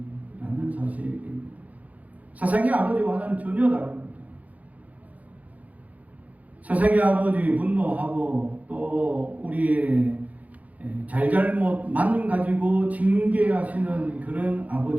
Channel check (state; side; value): late; left; 0.073 ms